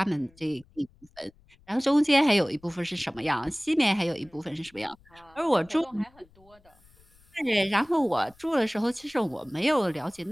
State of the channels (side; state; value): left; noise; rumble, 29 dB below the sound